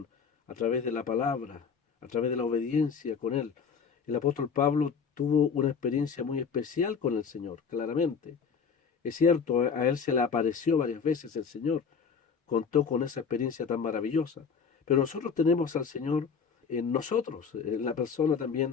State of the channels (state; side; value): quieter; right; 6.1 dB